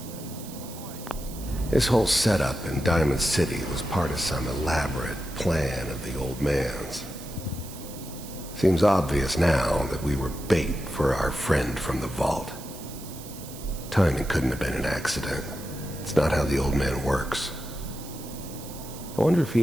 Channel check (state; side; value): noise; right; hiss, 15 dB below the sound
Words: This whole setup in Diamond City was part of some elaborate plan of the old man's. Seems obvious now that we were bait for our friend from the vault. Timing couldn't have been an accident. It's not how the old man works. I wonder if